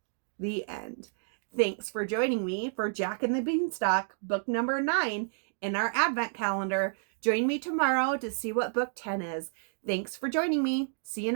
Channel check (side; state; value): left; silent; digital silence